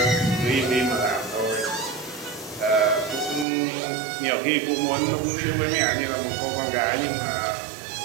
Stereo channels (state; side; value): drops out; left; at 3.5 s